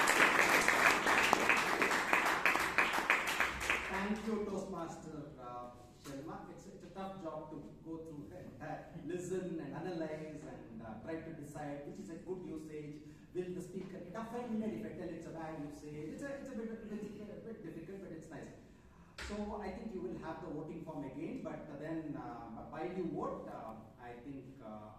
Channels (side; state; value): both; identical; correlation 1.00